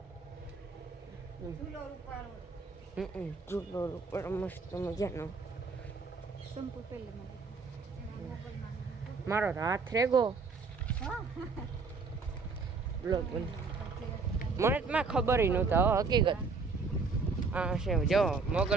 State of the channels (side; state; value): left; quieter; 4.4 dB